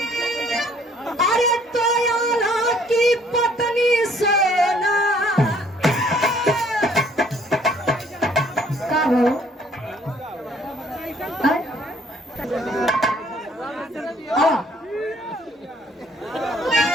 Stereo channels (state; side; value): normal; both; correlation 0.61